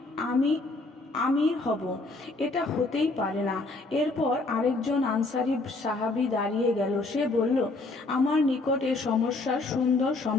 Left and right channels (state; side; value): quieter; right; 3.2 dB